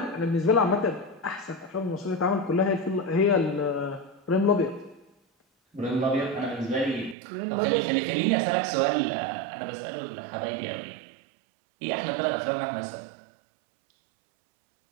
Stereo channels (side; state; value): left; drops out; at 7.2 s